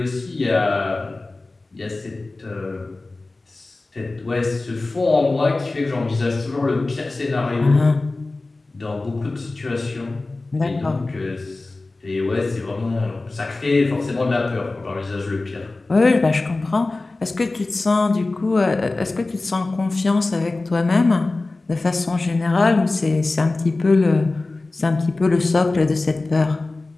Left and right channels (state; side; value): quieter; right; 3.2 dB